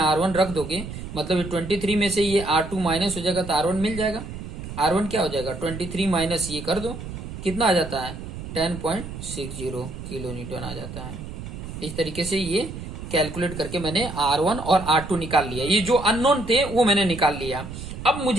रख दोगे, मतलब ये 23 में से ये R2 माइनस हो जाएगा, तो R1 मिल जाएगा। R1 क्या हो जाएगा, 23 माइनस ये कर दो, कितना आ जाता है, 10.60 किलो न्यूटन आ जाता है। इस तरीके से ये कैलकुलेट करके मैंने R1 और R2 निकाल लिया। ये जो अननोन थे वो मैंने निकाल लिया। अब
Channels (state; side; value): noise; right; rumble, 9 dB below the sound